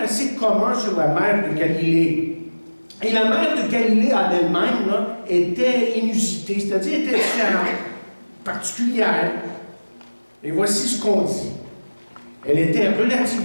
assez communs sur la mer de Galilée. Et la mer de Galilée en elle-même là, était inusitée, c'est-à-dire était différente, particulière. Et voici ce qu'on dit. Elle était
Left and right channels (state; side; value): inverted; both; correlation -1.00